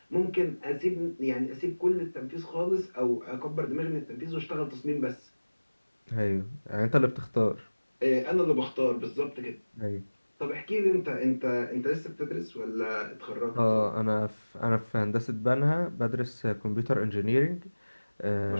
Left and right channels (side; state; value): both; inverted; correlation -1.00